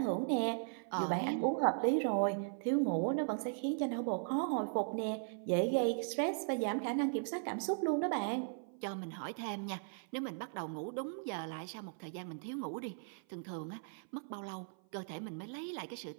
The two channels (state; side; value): silent; left; 52 dB below the other